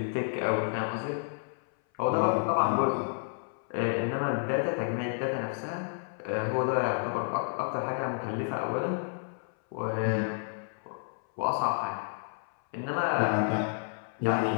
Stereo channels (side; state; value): right; silent; 57 dB below the other